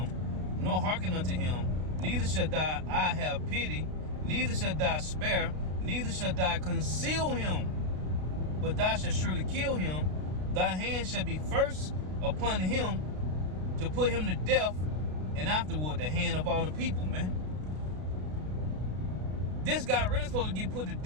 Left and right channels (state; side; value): late; left; 33 ms